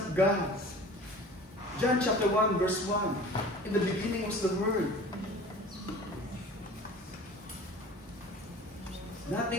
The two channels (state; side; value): normal; both; correlation 0.42